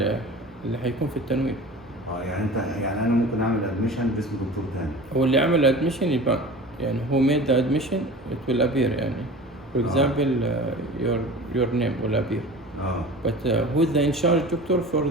اللي هيكون في التنويم. يعني انت يعني انا ممكن اعمل ادميشن باسم دكتور تاني. هو اللي عمل admission يبقى يعني who made the admission it will appear يعني. For example, your name will appear. But who is the in charge doctor for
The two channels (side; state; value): both; normal; correlation 0.38